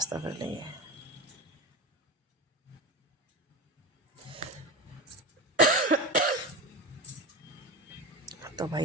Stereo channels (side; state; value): both; normal; correlation 0.24